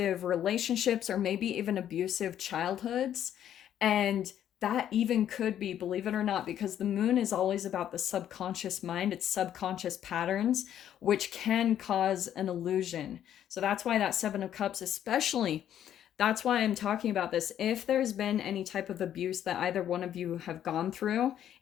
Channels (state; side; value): quieter; right; 10.5 dB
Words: relationships, or maybe even abusive childhoods. And that even could be, believe it or not, because the moon is always about the subconscious mind, it's subconscious patterns, which can cause an illusion. So that's why that Seven of Cups, especially, that's why I'm talking about this. If there's been any type of abuse that either one of you have gone through,